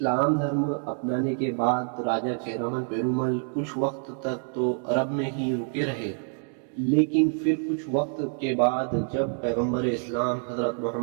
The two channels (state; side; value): silent; left; 55 dB below the other